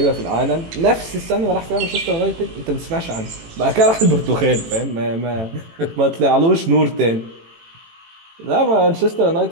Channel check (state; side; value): late; left; 18 ms